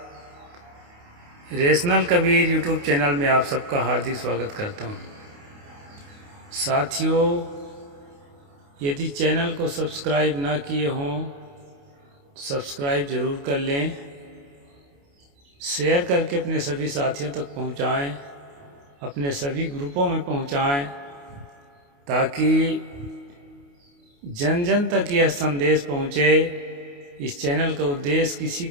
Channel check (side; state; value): left; late; 28 ms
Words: रेशनल कबीर यूट्यूब चैनल में आप सबका हार्दिक स्वागत करता हूं। साथियों, यदि चैनल को सब्सक्राइब ना किए हों, सब्सक्राइब ज़रूर कर लें, शेयर करके अपने सभी साथियों तक पहुंचाएं, अपने सभी ग्रुपों में पहुंचाएं, ताकि जन जन तक यह संदेश पहुंचे। इस चैनल का उद्देश्य किसी